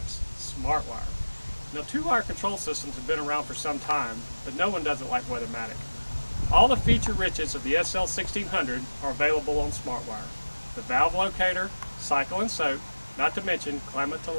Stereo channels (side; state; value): both; inverted; correlation -1.00